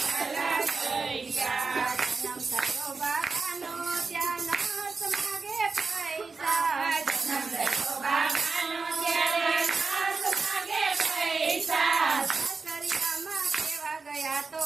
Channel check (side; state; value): left; quieter; 4.3 dB